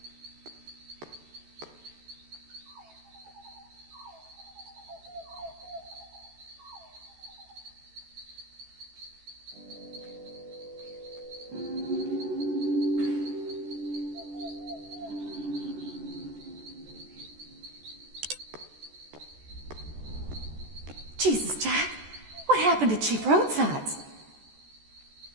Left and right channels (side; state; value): left; late; 14 ms